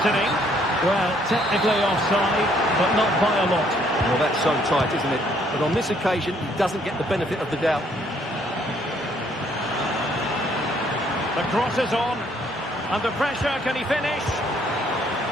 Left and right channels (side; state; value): both; normal; correlation 0.66